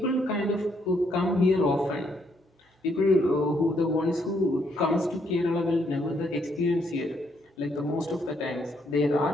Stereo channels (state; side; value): normal; both; correlation 0.73